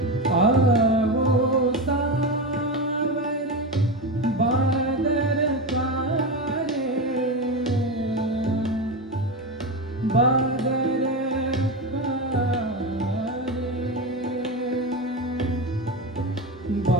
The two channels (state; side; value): normal; both; correlation 0.17